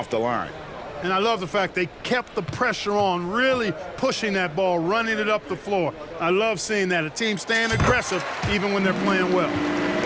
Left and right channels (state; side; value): identical; both; correlation 1.00